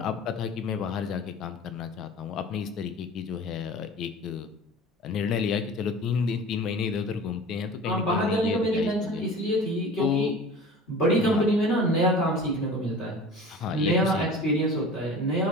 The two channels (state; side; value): normal; both; correlation 0.39